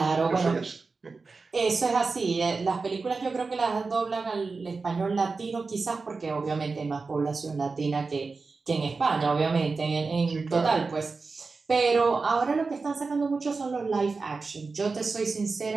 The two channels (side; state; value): left; quieter; 4.2 dB